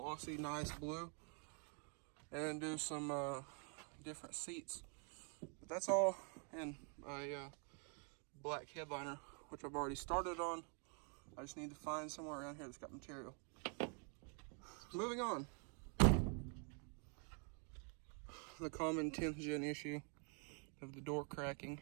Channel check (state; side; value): quieter; left; 39.5 dB